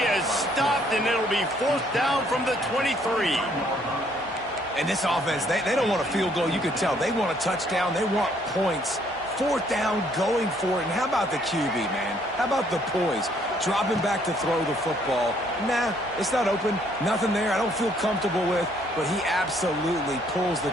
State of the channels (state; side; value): normal; both; correlation 0.66